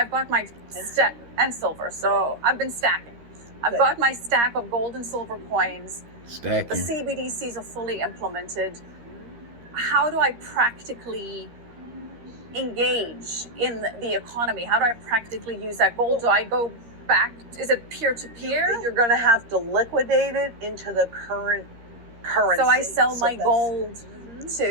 got my stack and silver. So I've been stacking. I've Good. got my stack of gold and silver coins. The Stacking. CBDCs are fully implemented. How do I practically engage in the economy? How do I practically use that gold? Do I go back? Is it peer-to-peer? You're going to have to liquidate it into the current currency. So I sell So my that's- gold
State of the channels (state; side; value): late; left; 13 ms